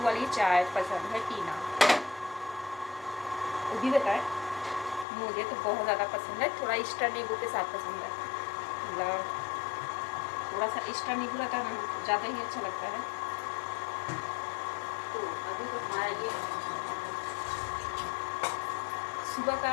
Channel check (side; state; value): right; drops out; at 5.1 s